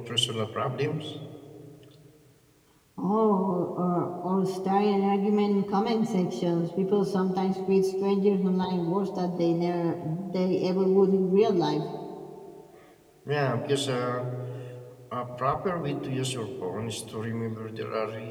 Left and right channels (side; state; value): both; identical; correlation 1.00